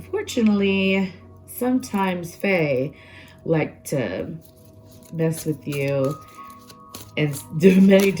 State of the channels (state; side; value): identical; both; correlation 1.00